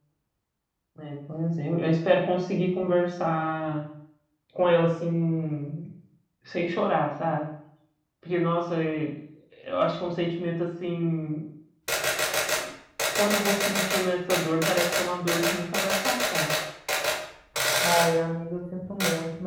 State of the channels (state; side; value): identical; both; correlation 1.00